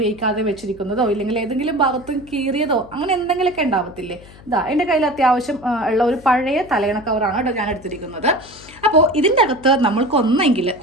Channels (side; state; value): left; noise; hum, 21 dB below the sound